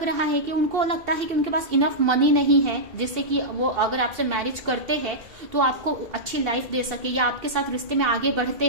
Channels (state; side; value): late; left; 2.7 ms